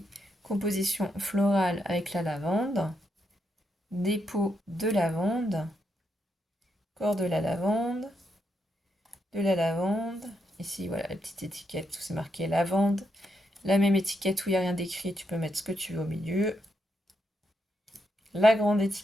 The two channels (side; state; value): both; normal; correlation 0.81